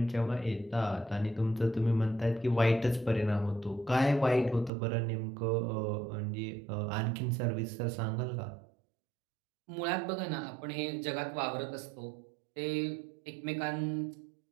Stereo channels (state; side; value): drops out; left; at 4.7 s